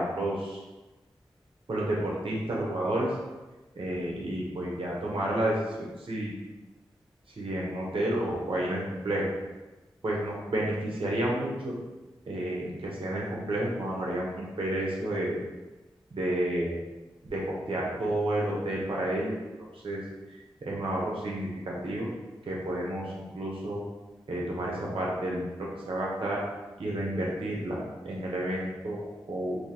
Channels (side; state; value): both; normal; correlation 0.77